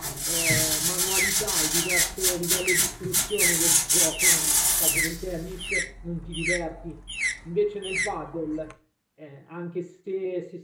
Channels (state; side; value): identical; both; correlation 1.00